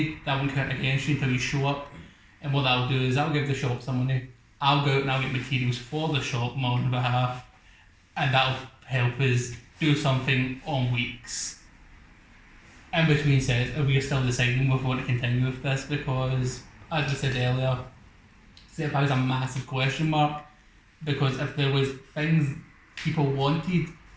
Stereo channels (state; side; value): identical; both; correlation 1.00